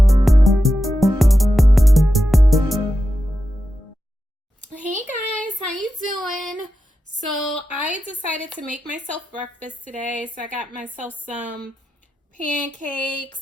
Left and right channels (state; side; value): normal; both; correlation 0.90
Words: Hey guys, how you doing? So I decided to make myself breakfast today. So I got myself some